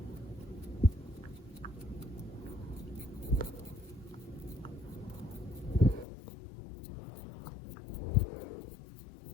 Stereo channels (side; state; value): right; drops out; at 6.1 s